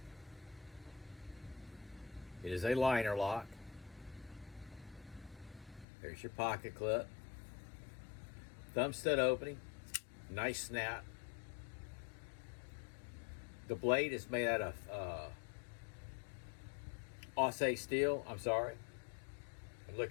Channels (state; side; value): drops out; right; at 5.9 s